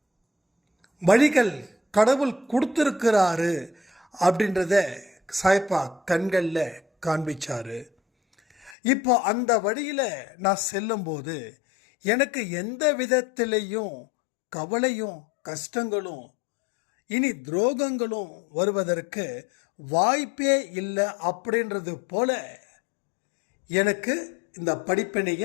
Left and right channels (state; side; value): drops out; right; at 8.8 s